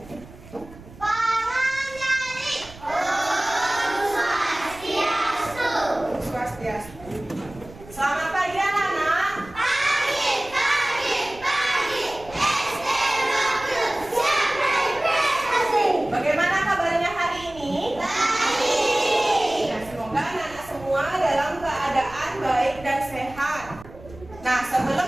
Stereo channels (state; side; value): noise; right; rumble, 19 dB below the sound